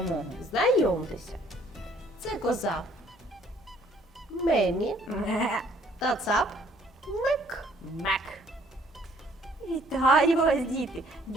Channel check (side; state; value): both; normal; correlation 0.61